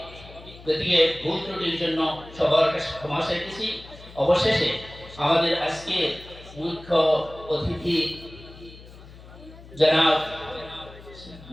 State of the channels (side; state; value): left; noise; hum, 19 dB below the sound